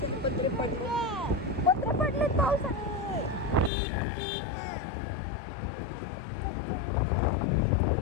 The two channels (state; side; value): drops out; right; at 3.7 s